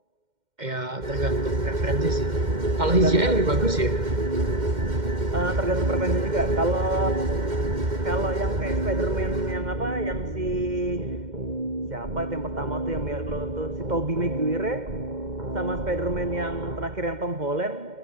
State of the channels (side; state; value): left; late; 2.1 ms